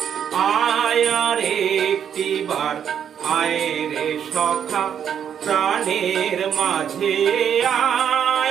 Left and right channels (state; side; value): quieter; left; 8.6 dB